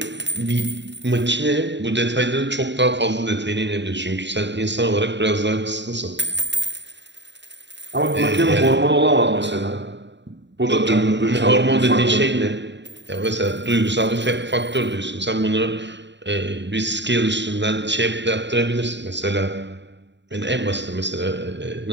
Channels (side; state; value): left; late; 0.52 ms